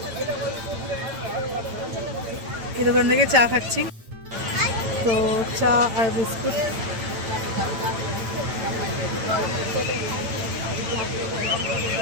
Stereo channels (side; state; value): left; late; 9.0 ms